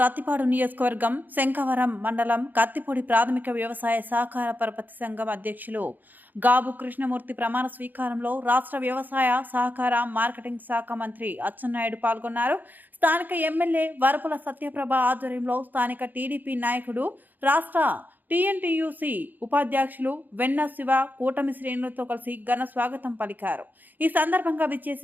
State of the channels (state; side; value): late; left; 0.086 ms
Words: నియోజకవర్గం శంఖవరం మండలం కత్తిపూడి ప్రాథమిక వ్యవసాయ సహకార పరపతి సంఘం అధ్యక్షులు గాబు కృష్ణమూర్తి ప్రమాణ స్వీకారంలో రాష్ట్ర వ్యవసాయ సహకార మార్కెటింగ్ శాఖ మంత్రి అచ్చెన్నాయుడు పాల్గొన్నారు. స్థానిక ఎమ్మెల్యే వరపుల సత్యప్రభ ఆధ్వర్యంలో స్థానిక టీడీపీ నాయకుడు రాష్ట్ర టీఎన్టీయూసీ ఉపాధ్యక్షులు వెన్న శివ కూటమి శ్రేణులతో కలిసి ఘన స్వాగతం పలికారు. ఈ సందర్భంగా